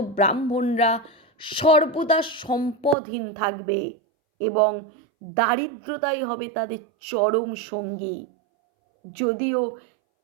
ব্রাহ্মণরা সর্বদা সম্পদহীন থাকবে এবং দারিদ্রতাই হবে তাদের চরম সঙ্গী। যদিও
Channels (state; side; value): drops out; left; at 3.0 s